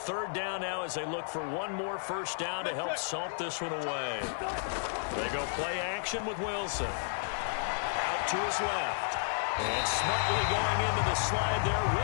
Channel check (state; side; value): silent; right; 56 dB below the other